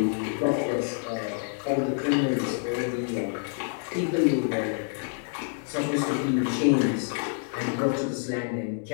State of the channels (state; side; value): silent; right; 56 dB below the other